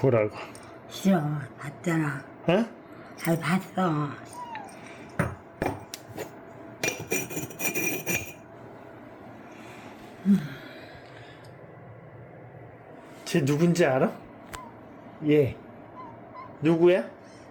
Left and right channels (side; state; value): both; identical; correlation 1.00